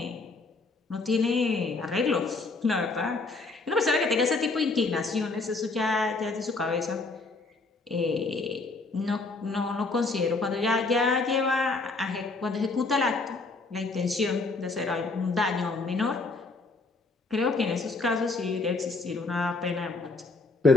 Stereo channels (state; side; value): quieter; right; 3.6 dB